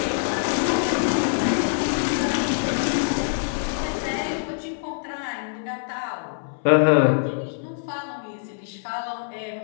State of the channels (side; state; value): right; silent; 62 dB below the other